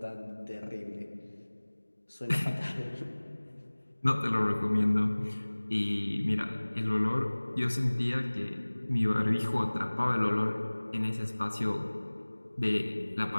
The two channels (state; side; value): inverted; both; correlation -1.00